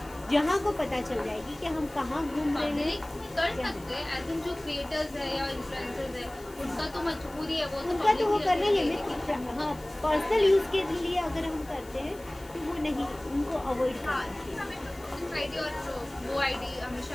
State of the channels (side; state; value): left; noise; hiss, 23 dB below the sound